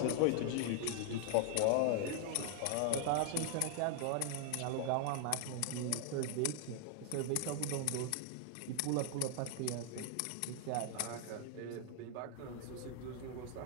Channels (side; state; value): both; different; correlation -0.01